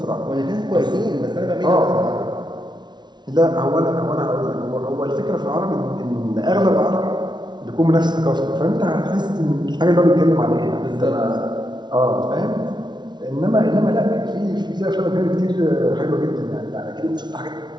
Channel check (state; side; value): late; left; 0.20 ms